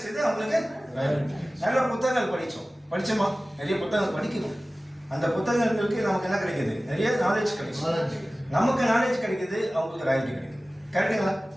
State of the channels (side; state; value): both; normal; correlation 0.97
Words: அவங்களுக்கு நல்ல புத்தகங்கள் படித்தோமா? நிறைய புத்தகங்கள் படிக்கணும். அந்த புத்தகங்களுக்கு நமக்கு என்ன கிடைக்குது? நிறைய நாலேஜ் கிடைக்கும். நமக்கு நாலேஜ் கிடைக்குது, அவங்களுக்கு ராயல்ட்டி கிடைக்குது. கரெக்டுங்களா?